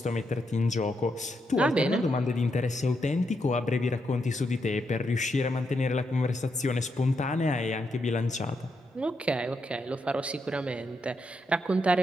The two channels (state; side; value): normal; both; correlation 0.81